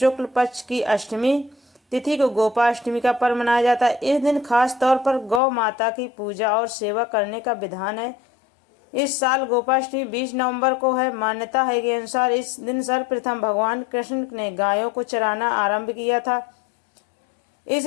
पक्ष की अष्टमी तिथि को गोपाष्टमी का पर्व मनाया जाता है। इस दिन खास तौर पर गौ माता की पूजा और सेवा करने का विधान है। इस साल गोपाष्टमी 20 नवंबर को है। मान्यता है के अनुसार इस दिन सर्वप्रथम भगवान कृष्ण ने गायों को चराना आरंभ किया था,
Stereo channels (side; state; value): right; drops out; at 5.4 s